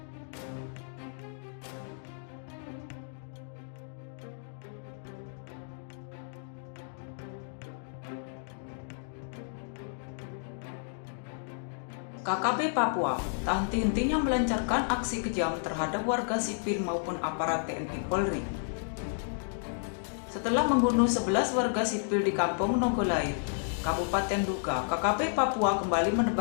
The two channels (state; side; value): silent; right; digital silence